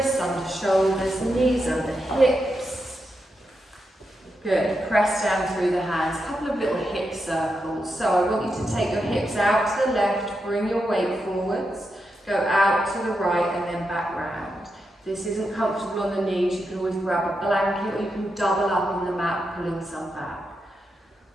under shoulders, knees under hips. Good. Press down through the hands. A couple of little hip circles. So I want you to take your hips out to the left, bring your weight forwards, go out to the right and then back round. If this isn't comfortable on the knees, you can always grab a blanket or you can double up on the mat, pulling some back.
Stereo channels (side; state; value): both; normal; correlation 0.86